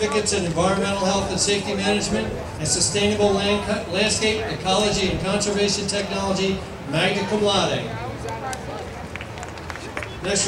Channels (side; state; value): both; identical; correlation 1.00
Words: in Environmental Health and Safety Management and Sustainable Landscape, Ecology, and Conservation Technology, magna cum laude. Next